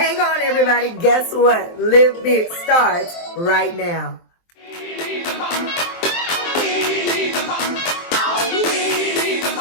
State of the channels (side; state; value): right; late; 23 ms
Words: on, everybody. Guess what? Live Big starts right now.